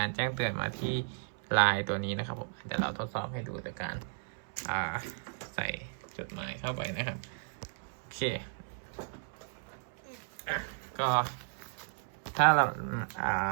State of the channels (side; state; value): left; silent; 55 dB below the other